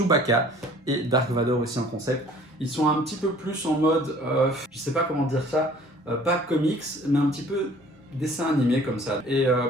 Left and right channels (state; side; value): normal; both; correlation 0.52